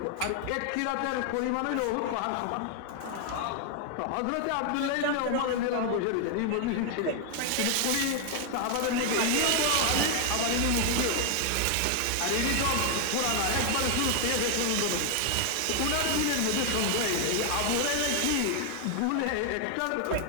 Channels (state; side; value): different; both; correlation 0.00